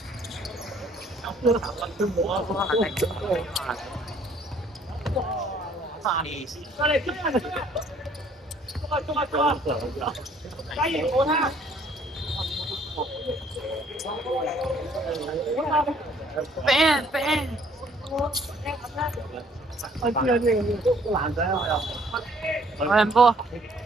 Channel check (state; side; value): normal; both; correlation 0.60